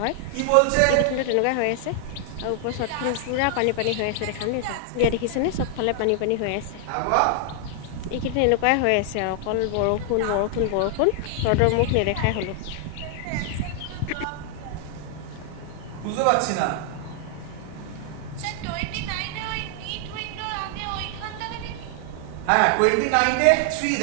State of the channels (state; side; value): different; both; correlation 0.00